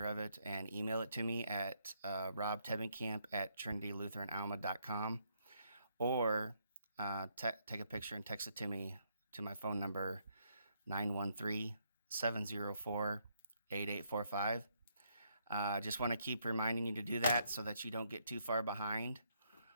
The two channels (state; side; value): inverted; both; correlation -0.74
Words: of it and email it to me at robtevenkamp@trinitylutheranalma.com, or take a picture and text it to me to my phone number 913-704-8845. Just want to keep reminding you to do that so that you don't get too far behind.